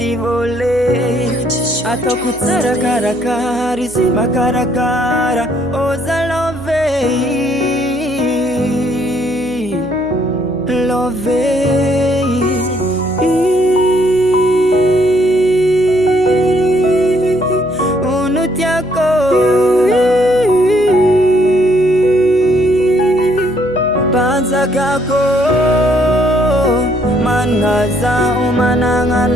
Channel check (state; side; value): noise; right; hum, 19 dB below the sound